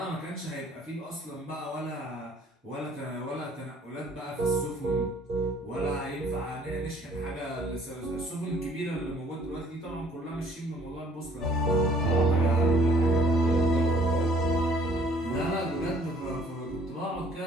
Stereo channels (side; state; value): both; normal; correlation 0.59